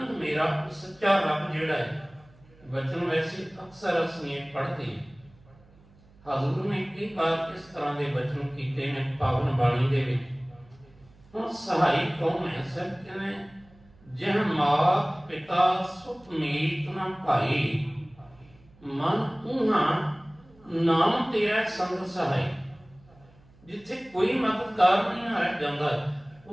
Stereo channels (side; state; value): right; noise; hum, 27 dB below the sound